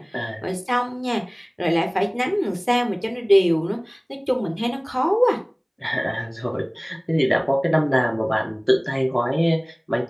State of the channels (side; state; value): both; identical; correlation 1.00